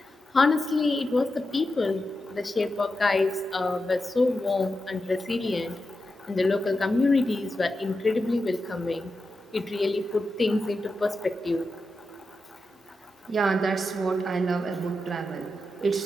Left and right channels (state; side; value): normal; both; correlation 0.89